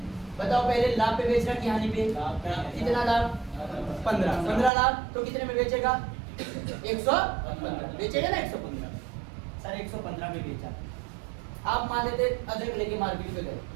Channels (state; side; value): drops out; left; at 4.7 s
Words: बताओ पहले लाभ पे बेच रहा कि हानि पे? कितना लाभ? 15 लाभ, तो कितने में बेचेगा? 115 बेचेगा ना, 115 सर 115 में बेचा। आप मान लेते अदरक लेके मार्केट पे गए,